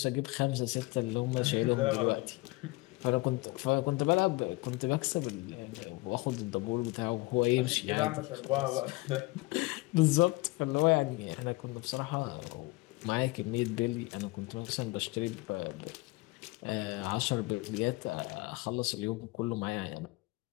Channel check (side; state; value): right; quieter; 23.0 dB